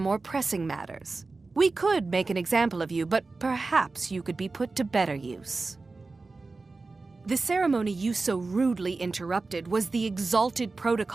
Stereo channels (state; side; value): quieter; left; 3.7 dB